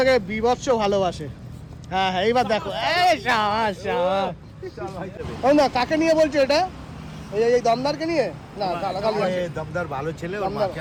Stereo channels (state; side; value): identical; both; correlation 1.00